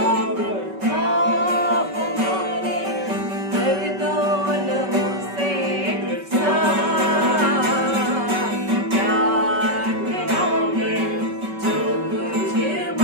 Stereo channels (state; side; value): late; left; 5.2 ms